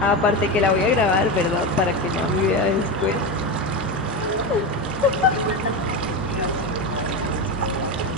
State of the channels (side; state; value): both; normal; correlation 0.17